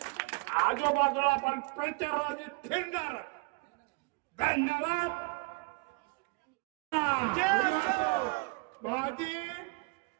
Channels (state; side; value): quieter; left; 27.5 dB